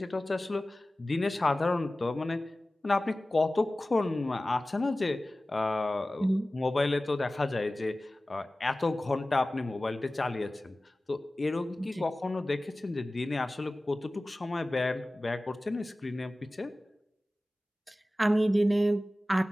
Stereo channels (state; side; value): normal; both; correlation 0.97